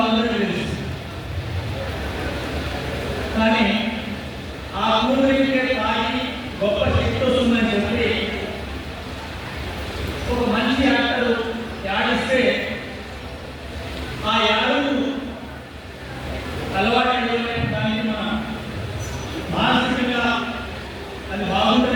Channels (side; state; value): both; identical; correlation 1.00